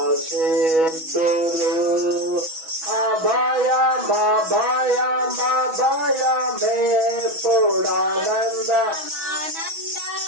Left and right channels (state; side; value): late; left; 6.2 ms